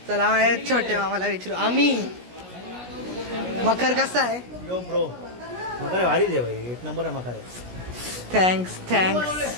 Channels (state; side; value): late; left; 17 ms